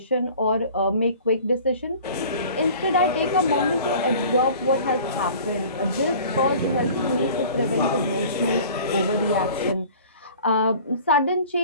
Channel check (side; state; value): both; inverted; correlation -0.45